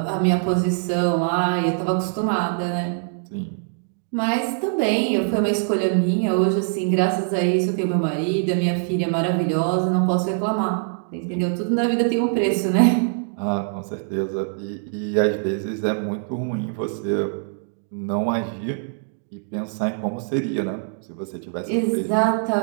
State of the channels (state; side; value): silent; left; digital silence